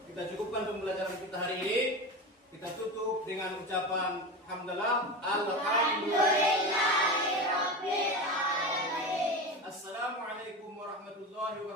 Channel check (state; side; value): normal; both; correlation 0.24